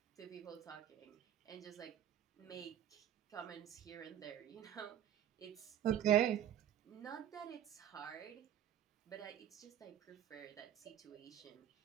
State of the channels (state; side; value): quieter; left; 10.7 dB